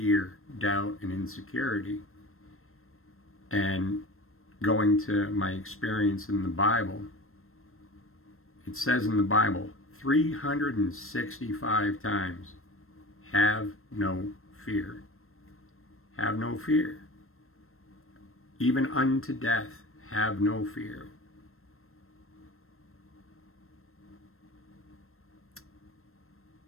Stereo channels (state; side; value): late; right; 0.62 ms